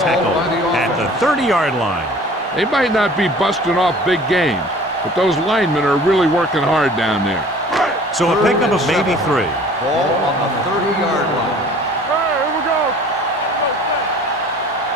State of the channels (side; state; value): both; normal; correlation 0.48